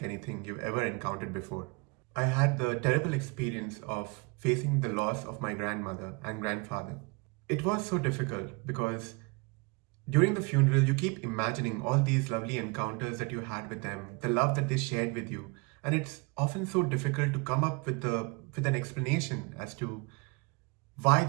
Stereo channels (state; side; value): quieter; left; 28.8 dB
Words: anything you've ever encountered before. I had the terrible experience of facing the loss of my grandmother and grandfather. It was so difficult because during the funeral, you keep imagining all these lovely encounters that you had with them, the love that they shared with you, and it's often so difficult to come up with an explanation as to why